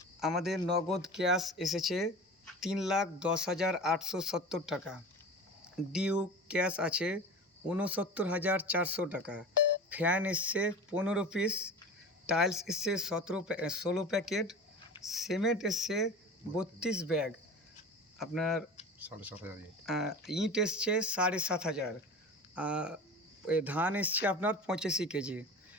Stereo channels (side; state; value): both; normal; correlation 0.33